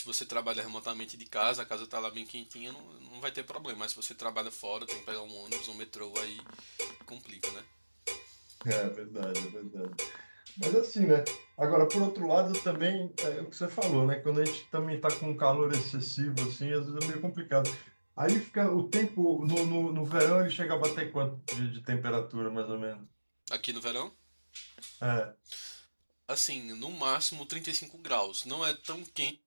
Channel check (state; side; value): inverted; both; correlation -1.00